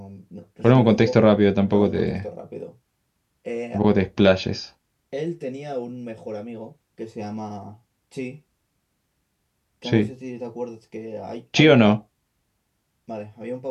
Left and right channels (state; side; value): identical; both; correlation 1.00